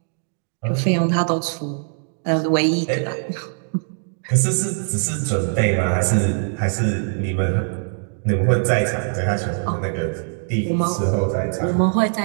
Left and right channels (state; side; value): silent; left; 62 dB below the other